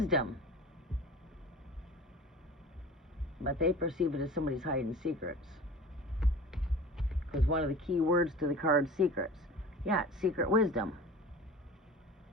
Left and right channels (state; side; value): normal; both; correlation 0.39